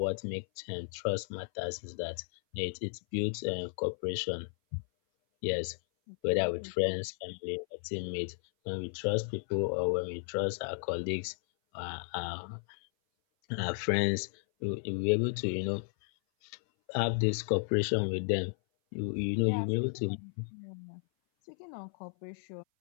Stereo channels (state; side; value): silent; right; 55 dB below the other